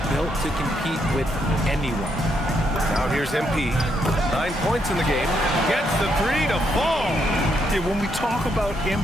built to compete with anyone. Now here's MP. 9 points in the game. Gets the 3 to fall. Yeah, when we talk about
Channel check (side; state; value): both; normal; correlation 0.76